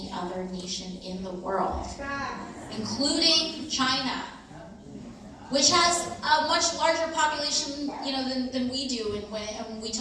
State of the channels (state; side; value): identical; both; correlation 1.00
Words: other nation in the world, including China, which has a much larger population, than we do. And when we